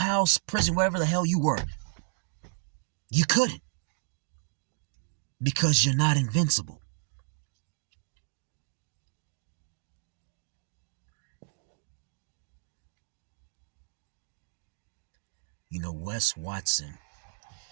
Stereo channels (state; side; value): silent; left; 56 dB below the other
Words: prison, wherever the hell you were? You couldn't. Because you're not invincible. You know, Wes Watson,